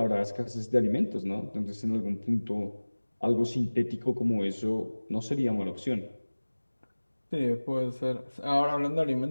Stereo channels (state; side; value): inverted; both; correlation -1.00